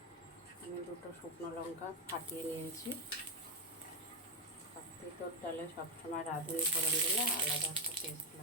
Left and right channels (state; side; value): normal; both; correlation 0.05